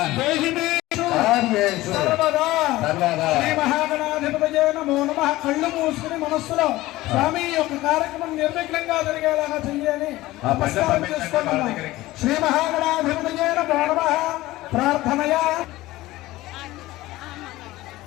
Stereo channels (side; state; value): right; quieter; 17.7 dB